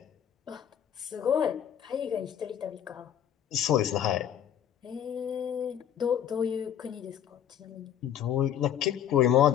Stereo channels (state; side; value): quieter; right; 9.8 dB